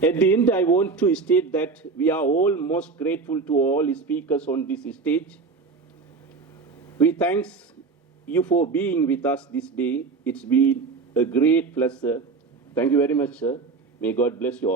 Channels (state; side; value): quieter; left; 4.4 dB